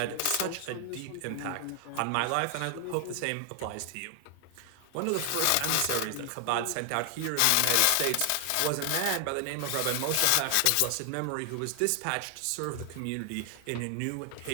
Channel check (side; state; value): both; different; correlation 0.00